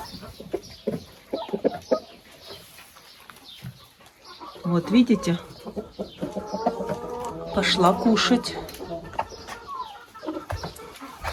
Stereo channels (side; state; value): both; identical; correlation 1.00